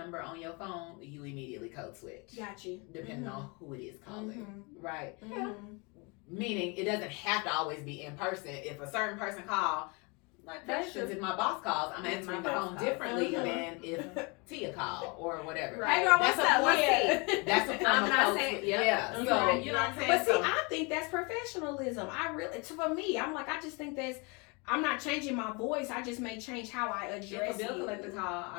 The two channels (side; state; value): right; quieter; 30.2 dB